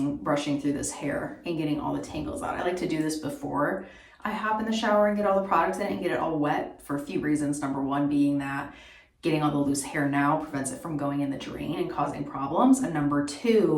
brushing through this hair and getting all the tangles out. I like to do this before I hop in the shower and get all the products in it and get it all wet for a few reasons. Number one being that getting all the loose hair now prevents it from going in the drain and causing problems. And number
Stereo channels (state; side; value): identical; both; correlation 1.00